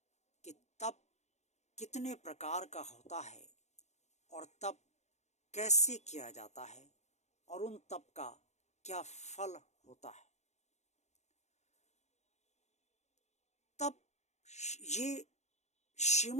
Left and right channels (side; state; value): right; late; 0.33 ms